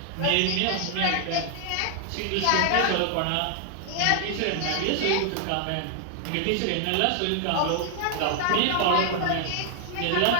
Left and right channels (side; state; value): both; different; correlation 0.00